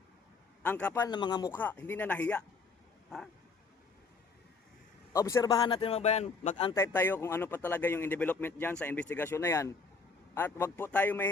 Ang kapal ng mga mukha, hindi na nahiya. Ha? Obserbahan natin mga bayan, mag-antay tayo kung ano pa talaga yung development dyan sa investigasyon na yan. At wag po tayo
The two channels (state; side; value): quieter; right; 4.4 dB